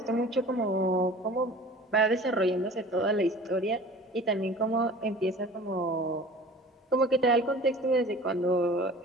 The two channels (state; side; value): normal; both; correlation 0.43